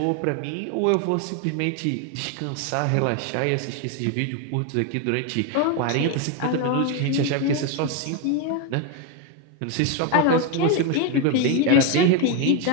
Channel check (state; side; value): different; both; correlation 0.02